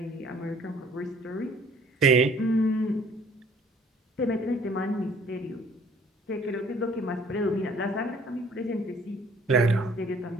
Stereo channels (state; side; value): normal; both; correlation 0.56